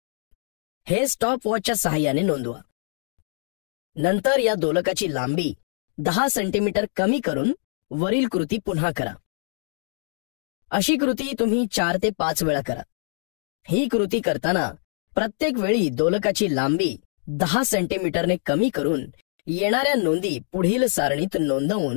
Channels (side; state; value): right; silent; digital silence